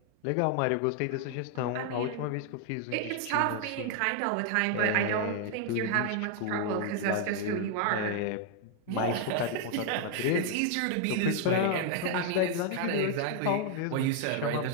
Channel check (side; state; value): both; different; correlation 0.00